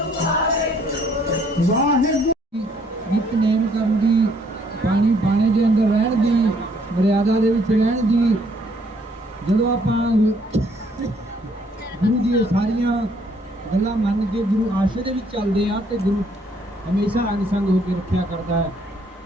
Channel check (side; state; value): both; normal; correlation 0.65